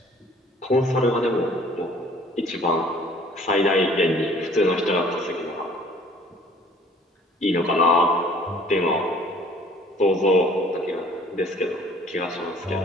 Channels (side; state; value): both; normal; correlation 0.54